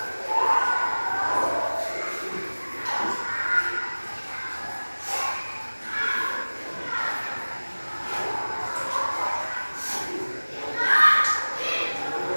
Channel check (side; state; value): both; inverted; correlation -1.00